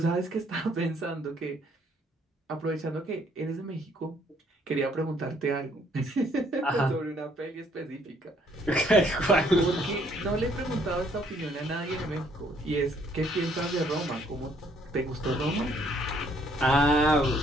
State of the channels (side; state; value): both; normal; correlation 0.65